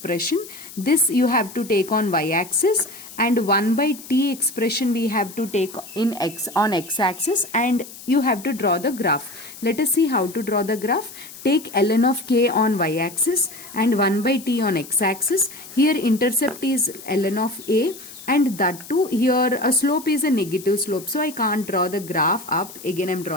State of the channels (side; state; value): left; noise; hiss, 16 dB below the sound